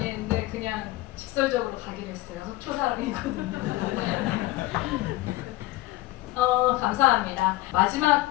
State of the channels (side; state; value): right; quieter; 18.4 dB